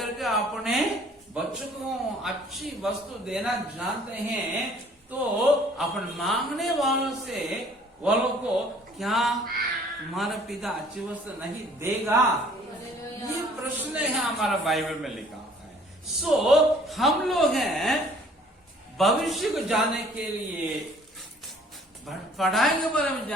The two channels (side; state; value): both; normal; correlation 0.56